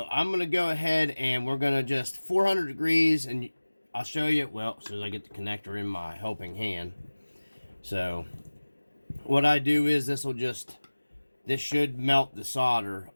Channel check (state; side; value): inverted; both; correlation -1.00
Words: I'm going to go ahead and we're going to just 400 degrees, and I'll show you, well, as soon as I get the connector in my helping hand. So what I do is this should melt the solder